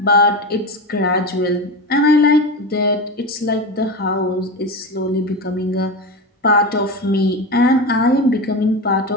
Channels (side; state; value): both; normal; correlation 0.22